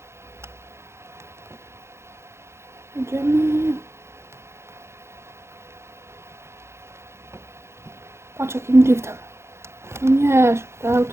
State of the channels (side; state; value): left; late; 0.13 ms